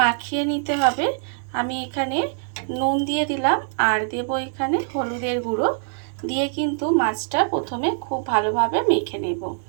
নিতে হবে। আমি এখানে নুন দিয়ে দিলাম আর দেব এখানে হলুদের গুঁড়ো দিয়ে কিন্তু মাছটা প্রথমে খুব ভালোভাবে মেখে নেব।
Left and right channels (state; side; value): silent; left; digital silence